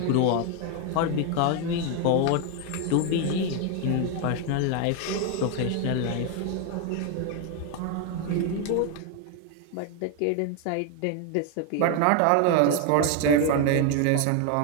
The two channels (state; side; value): different; both; correlation 0.01